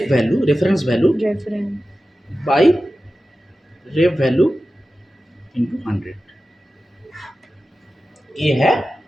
value, reference value by ref value into 100, ये है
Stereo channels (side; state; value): both; normal; correlation 0.94